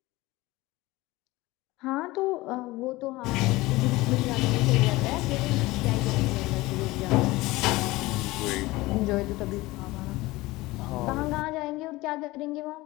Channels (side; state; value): right; quieter; 20.0 dB